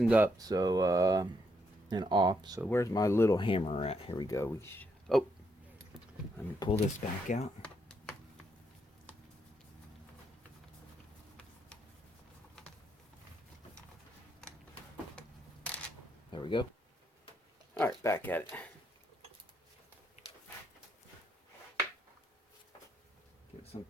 up, so and off. So where's my little hammer at? Here we go. Oh, let me pull this back out. There we go. All right, back at it. Give it some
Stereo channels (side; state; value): both; normal; correlation 0.77